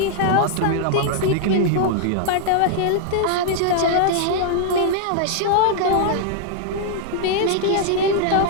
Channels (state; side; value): different; both; correlation -0.01